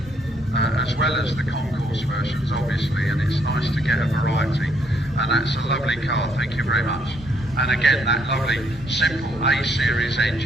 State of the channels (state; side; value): normal; both; correlation 0.70